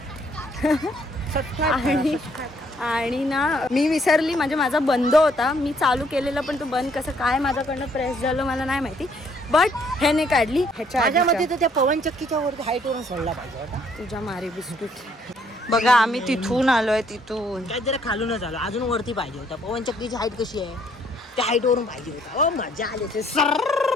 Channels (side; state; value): both; normal; correlation 0.66